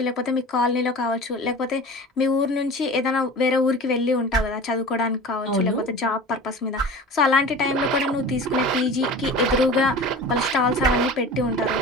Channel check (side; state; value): both; normal; correlation 0.36